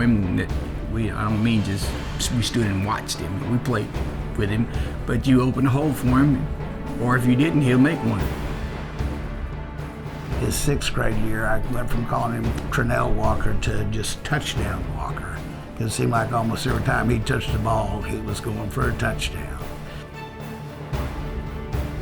him. I don't mean just we stood and watched him. We played with him. But you open a hole for him, or if you didn't, he'll make one. His 6th grade year, I went from calling him Trenell Walker to just touchdown Walker. It seemed like almost every time he touched the ball, he was going for a touchdown.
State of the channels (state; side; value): identical; both; correlation 1.00